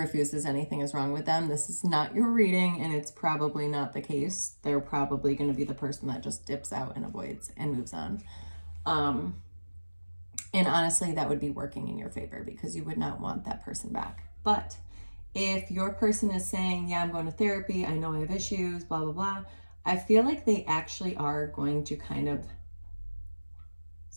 anything is wrong with them, this is not your reading, and it's probably not the case. They're probably going to be the person that just dips out and avoids and moves on. And honestly, that would be working in your favor, because you would not want that person back. But if your person is saying, yeah, I'm going to therapy, I know I have issues, blah, blah, blah, I feel like they actually are going to kind of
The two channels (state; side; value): inverted; both; correlation -1.00